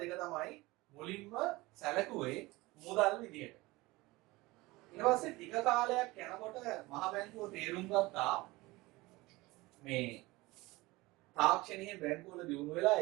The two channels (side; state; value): left; quieter; 21.3 dB